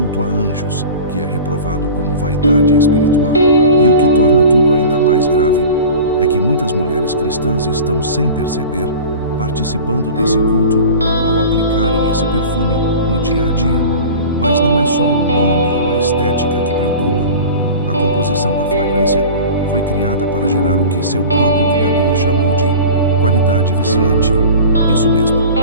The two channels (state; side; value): inverted; both; correlation -0.37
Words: a anjos, que é reprovado como vaidade espiritual. E o que torna tudo ainda mais grave é que muitas mulheres cristãs estão, sem perceber, participando desse culto ao aplicarem esse perfume no dia a dia. Mas não é só o nome ou a estética que preocupam. A composição da fragrância foi criada para gerar o que seu próprio criador chamou de qualidade viciante. Isso mesmo,